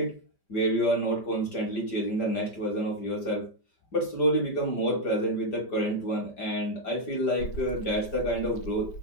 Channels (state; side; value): late; right; 5.1 ms